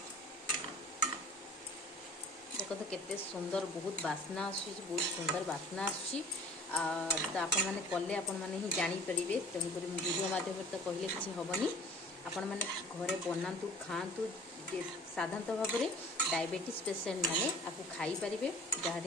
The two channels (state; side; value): normal; both; correlation 0.47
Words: देखो तो केते सुंदर बहुत बास्ना बहुत सुंदर बास्ना तो आपण मैंने कले आपण मैंने ही जानीपर। तेणुक वीडियो माध्यम तो कहले किसी हेनी आपण मैंने घरे बनातु खातु साधारणतः भाव में डायबिटीज पेसेंट मैंने आपको खाई पारे जहाँ